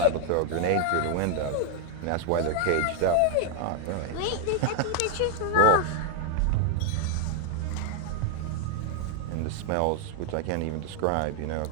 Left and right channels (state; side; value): different; both; correlation 0.00